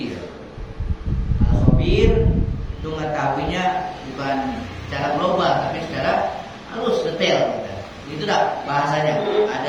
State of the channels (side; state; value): both; identical; correlation 1.00